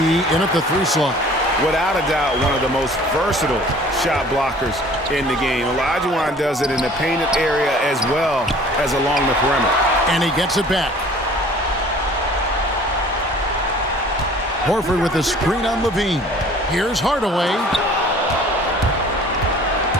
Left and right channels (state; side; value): normal; both; correlation 0.50